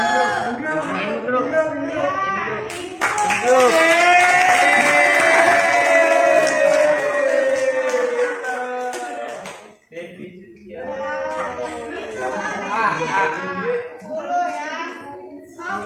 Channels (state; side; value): identical; both; correlation 1.00